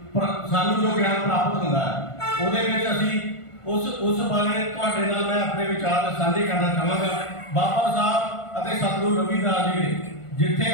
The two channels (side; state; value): right; late; 1.5 ms